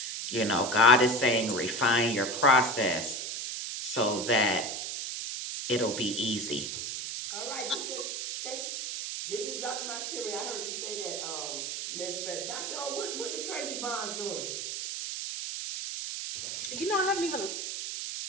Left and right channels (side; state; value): right; noise; hiss, 4 dB below the sound